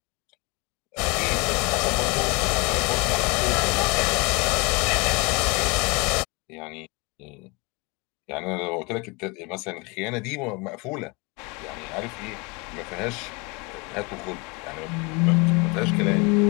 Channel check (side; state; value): right; quieter; 28.2 dB